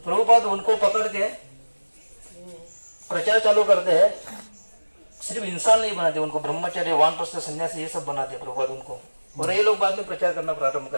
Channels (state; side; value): inverted; both; correlation -1.00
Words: उनको पकड़ के प्रचार चालू करते हैं। सिर्फ इंसान नहीं बनाते, उनको ब्रह्मचर्य, वानप्रस्थ, सन्यासी ये सब बनाते हैं प्रभुपाद उनको। और ये लोग बाद में प्रचार करना प्रारंभ